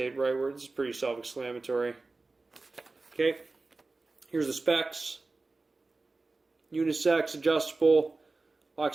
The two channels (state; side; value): quieter; left; 3.5 dB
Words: rightward. This is pretty self-explanatory. Okay. Here's the specs. Unisex, adjustable, lock